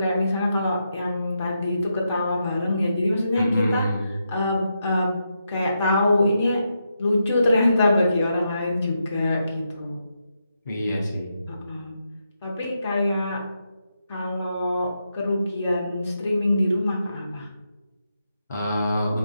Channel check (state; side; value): inverted; both; correlation -0.83